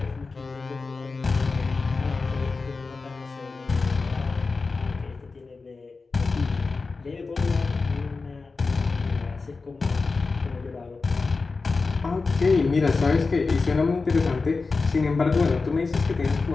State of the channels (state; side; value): quieter; right; 4.1 dB